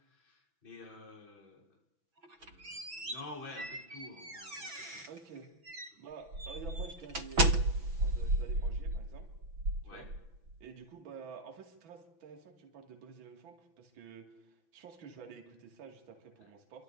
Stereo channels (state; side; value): late; left; 6.0 ms